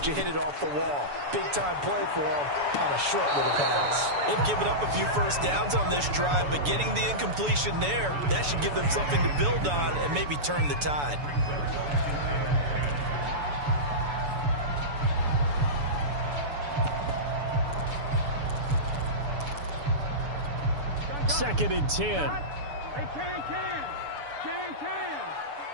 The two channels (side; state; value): left; late; 7.0 ms